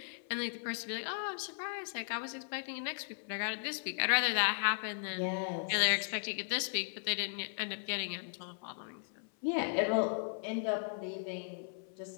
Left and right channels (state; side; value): silent; right; 53 dB below the other